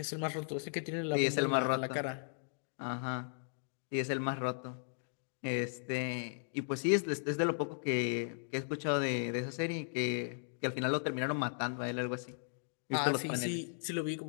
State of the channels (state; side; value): silent; right; digital silence